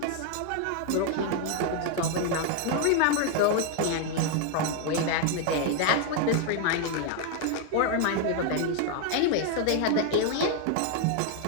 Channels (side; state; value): both; different; correlation 0.00